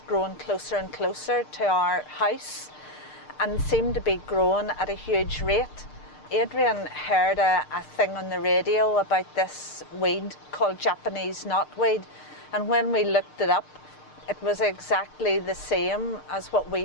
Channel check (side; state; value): right; late; 6.6 ms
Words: closer and closer to our house and seemed to be growing at a huge rate. Adrian heard a thing on the radio about this weed called Japanese Knotweed, and when we looked it up, it was exactly the same as what